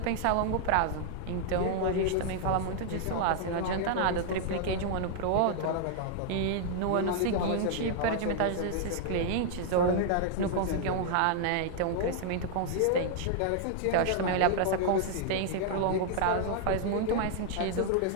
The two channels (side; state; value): both; different; correlation 0.00